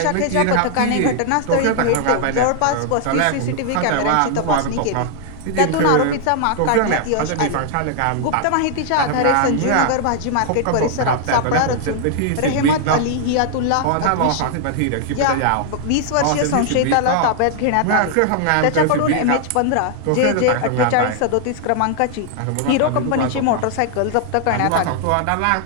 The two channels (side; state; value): both; different; correlation 0.00